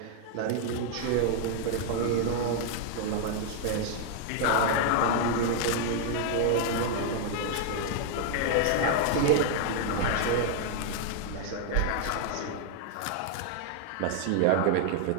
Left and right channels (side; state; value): both; different; correlation 0.00